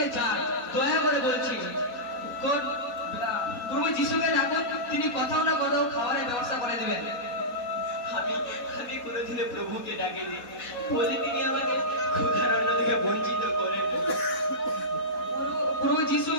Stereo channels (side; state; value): right; late; 4.1 ms